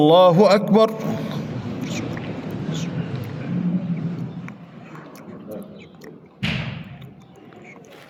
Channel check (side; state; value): both; identical; correlation 1.00